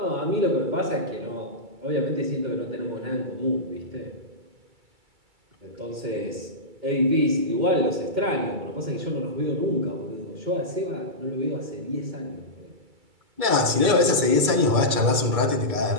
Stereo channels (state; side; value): late; left; 2.3 ms